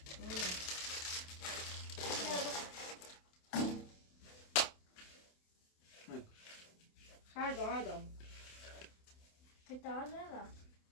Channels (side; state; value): right; late; 28 ms